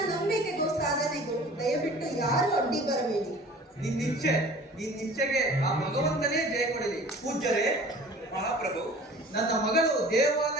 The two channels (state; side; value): normal; both; correlation 0.45